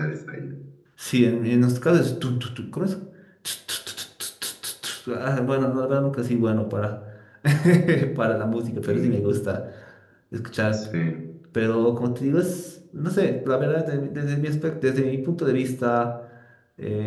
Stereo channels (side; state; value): both; identical; correlation 1.00